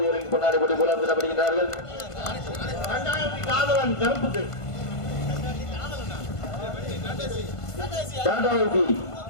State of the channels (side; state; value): right; late; 1.5 ms